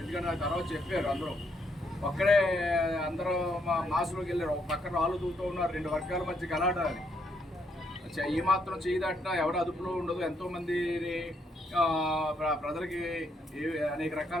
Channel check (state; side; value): normal; both; correlation 0.74